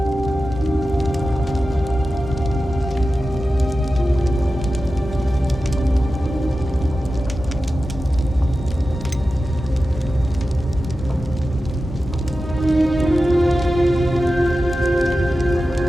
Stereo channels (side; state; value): both; normal; correlation 0.93